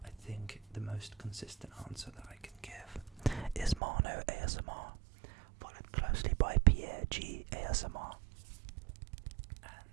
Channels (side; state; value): left; drops out; at 3.8 s